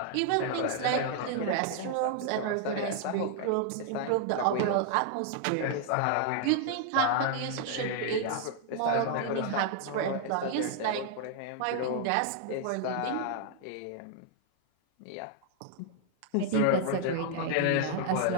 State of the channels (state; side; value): different; both; correlation 0.00